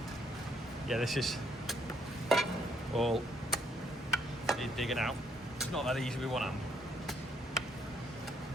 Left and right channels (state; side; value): normal; both; correlation 0.71